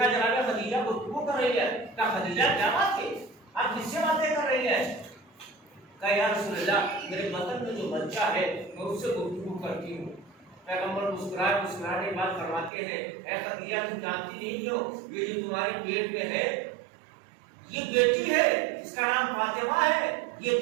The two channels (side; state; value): left; drops out; at 12.7 s